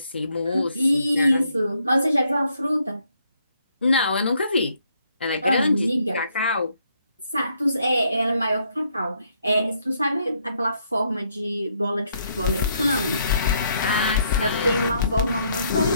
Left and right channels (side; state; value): both; inverted; correlation -0.72